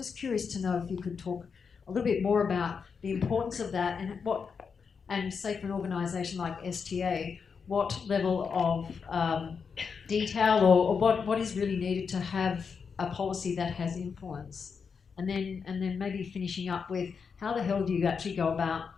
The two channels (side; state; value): right; quieter; 5.9 dB